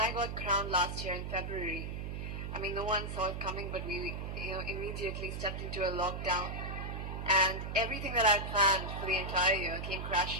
I got crowned last year in February, I mean, no one saw it coming, but we, immediately stepped into a lockdown, and everything that I planned for the entire year came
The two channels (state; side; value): noise; right; hum, 5 dB below the sound